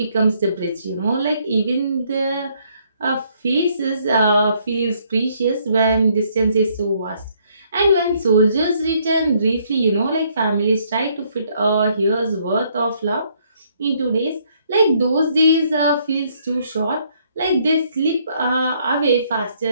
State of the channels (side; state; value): both; inverted; correlation -0.68